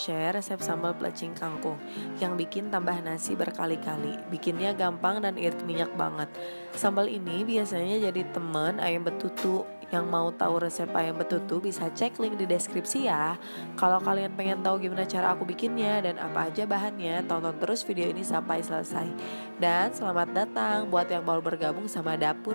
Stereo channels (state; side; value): inverted; both; correlation -1.00